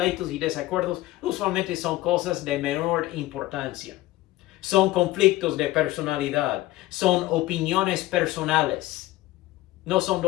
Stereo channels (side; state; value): right; quieter; 17.1 dB